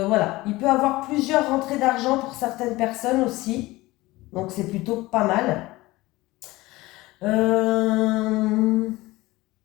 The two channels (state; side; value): quieter; right; 19.7 dB